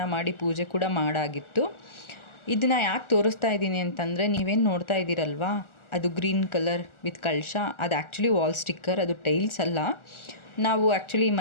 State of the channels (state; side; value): late; right; 1.4 ms